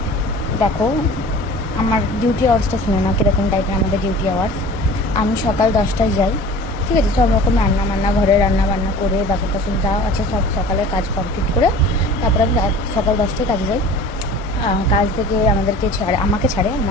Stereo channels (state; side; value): normal; both; correlation 0.42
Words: দেখো আমার ডিউটি আওয়ার্সটা শুনে না কীরকম টাইপের আমাদের ডিউটি আওয়ার্স। আমি সকাল 10টায় যাই, ঠিক আছে, সব রকম রান্না ঘরে রান্না বান্না করে বাসন টাসন যা আছে সব সকালের কাজ কমপ্লিট করে তারপরে আমি সকাল 10টায় কাজে যাই। কাজ থেকে আমাকে ছাড়ে